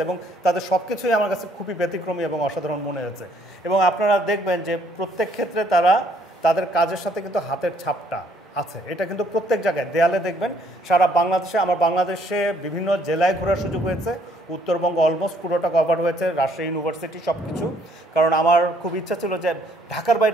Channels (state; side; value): normal; both; correlation 0.65